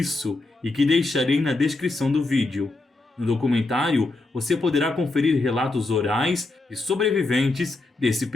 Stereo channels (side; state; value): right; quieter; 3.1 dB